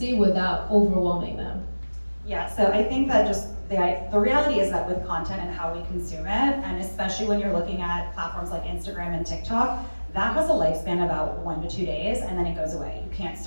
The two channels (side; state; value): both; inverted; correlation -1.00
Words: without overwhelming them? Yeah, so I think that just the reality is that with content and how we consume it, and especially when you're looking at platforms like Instagram and TikTok, that has a lifespan of about 1 to 2 days, and then it goes away. You can't